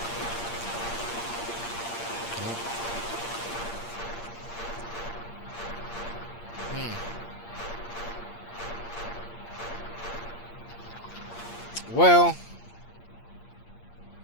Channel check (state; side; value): late; right; 8.6 ms